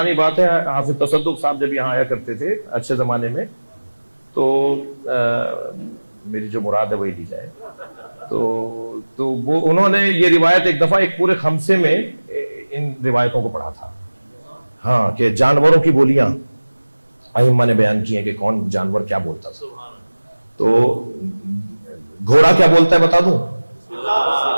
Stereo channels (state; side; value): inverted; both; correlation -1.00